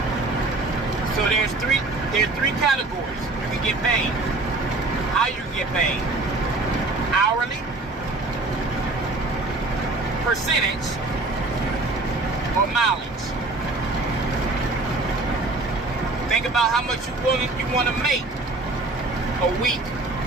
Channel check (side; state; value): left; quieter; 3.1 dB